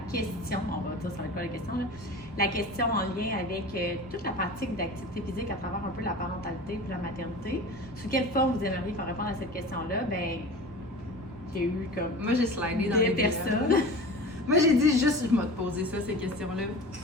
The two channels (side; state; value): both; normal; correlation 0.35